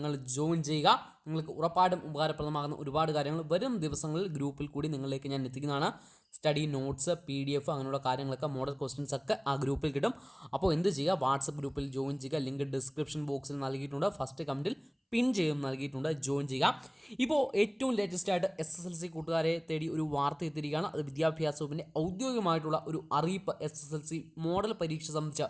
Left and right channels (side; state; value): both; identical; correlation 1.00